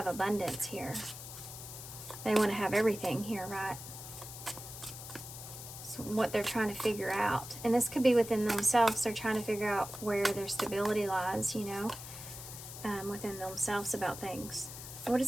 abundance here. They want to have everything here, right? So what they're trying to figure out. And this could be within themselves. They're trying to figure out where their stability lies, you know, within themselves about things. What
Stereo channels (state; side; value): noise; left; hiss, 11 dB below the sound